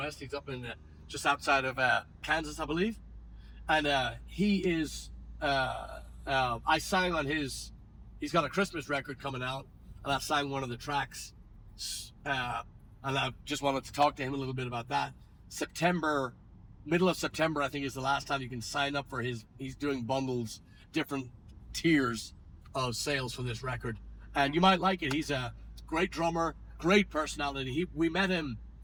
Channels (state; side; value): identical; both; correlation 1.00